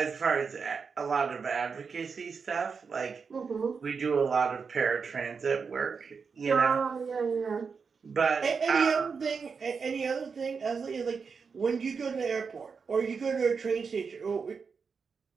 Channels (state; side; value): quieter; left; 5.5 dB